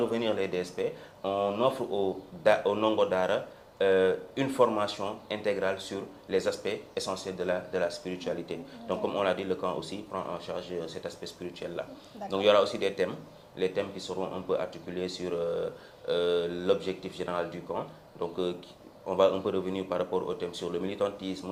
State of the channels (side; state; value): both; identical; correlation 1.00